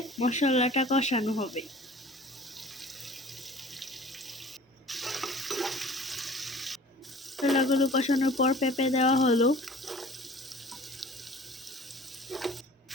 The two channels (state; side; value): normal; both; correlation 0.45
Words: মশলাটা কষানো হবে। মশলাগুলো কষানোর পর পেঁপে দেওয়া হলো,